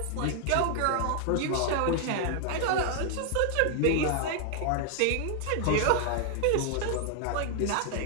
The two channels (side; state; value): both; different; correlation 0.00